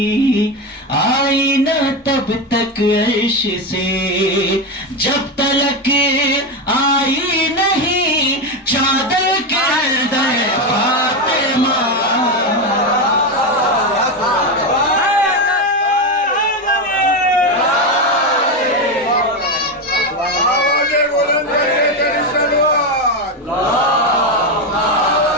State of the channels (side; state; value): both; normal; correlation 0.12